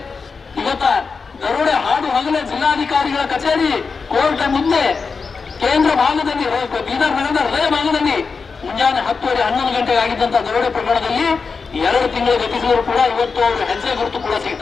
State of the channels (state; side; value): quieter; right; 4.9 dB